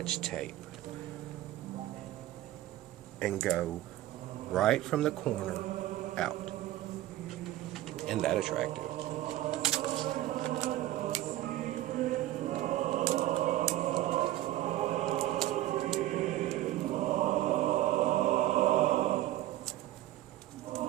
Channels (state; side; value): quieter; left; 14.9 dB